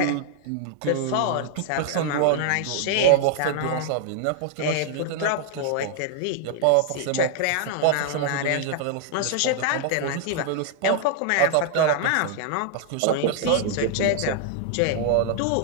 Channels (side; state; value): both; different; correlation -0.01